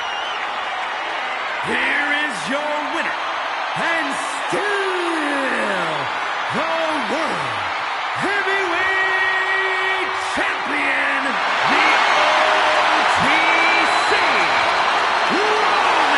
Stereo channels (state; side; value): identical; both; correlation 1.00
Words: Here is your winner, and still the World Heavyweight Champion, the OTC, Roman